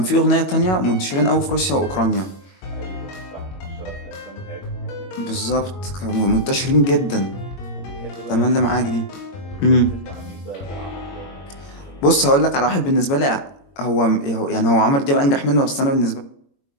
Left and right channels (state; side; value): late; right; 22 ms